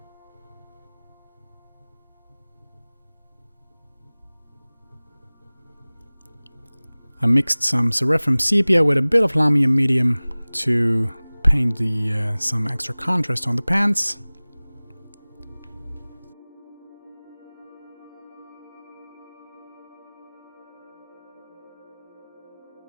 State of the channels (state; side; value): inverted; both; correlation -1.00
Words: I mixed some Seraphim Sepia with a bit of Lamium Medium to paint some extra contrast on the pants.